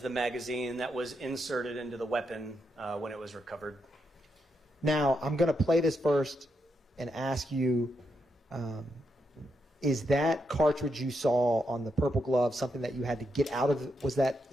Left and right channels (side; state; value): both; normal; correlation 0.81